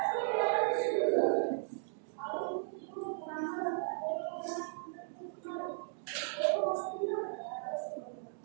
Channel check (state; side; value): silent; left; digital silence